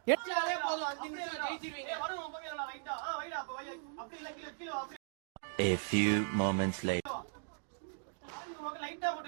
எச்சாலே போதும் 5 நிமிஷம் ஜெயிச்சிருவீங்க வரும் ஓம் பங்க லைட்டா வைடா அப்ப வை அப்படி இல்ல கீழ அப்படி A few moments later. லைட்டா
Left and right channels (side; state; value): left; silent; digital silence